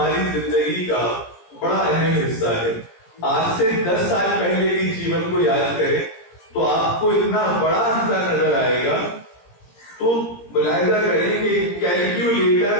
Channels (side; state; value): right; late; 17 ms